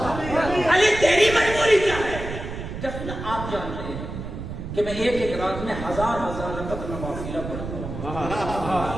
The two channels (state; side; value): noise; right; rumble, 8 dB below the sound